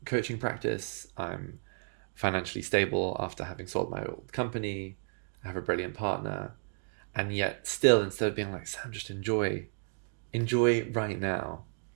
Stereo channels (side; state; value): left; silent; digital silence